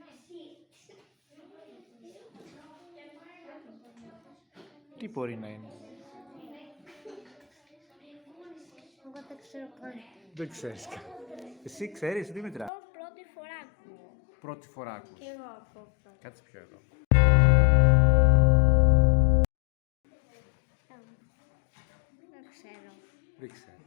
Τι μπορεί να είναι? Εγώ δεν ξέρω καν. Δεν ξέρεις. Εσύ ξέρεις, Δήμητρα? Εγώ πρώτη φορά ακούω. Πρώτη φορά ακούς. Και εγώ ακούω πρώτη. Κάτσε πιο εδώ. Δεν ξέρω. Δεν ξέρω.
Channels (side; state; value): right; drops out; at 12.7 s